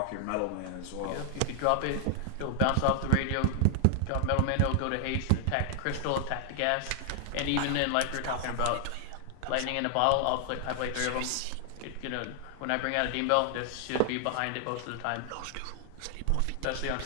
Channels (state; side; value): different; both; correlation 0.00